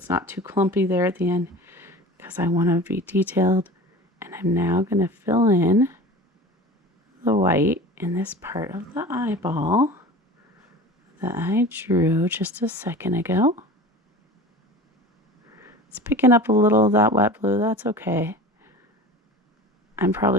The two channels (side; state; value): both; normal; correlation 0.37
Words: not too clumpy there at the end, because I want to be detailed. And I'm now going to fill in the white in this part of the eyeball that I drew just a second ago. It's picking up a little of that wet blue, that's okay. I'm